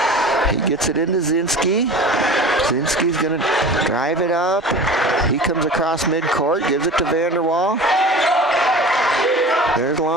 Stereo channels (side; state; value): both; normal; correlation 0.36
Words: He gets it into Zinski. Zinski's going to drive it up. He comes across midcourt, gives it to Vanderwall. There's